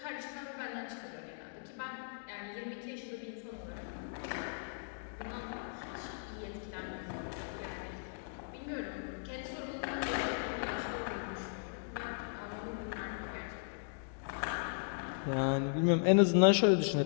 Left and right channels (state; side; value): silent; right; digital silence